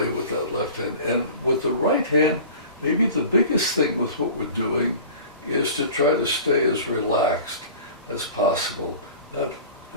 with that left hand. And with the right hand, maybe the biggest thing with what we're doing is to try to stay as relaxed as possible.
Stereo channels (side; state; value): both; inverted; correlation -0.40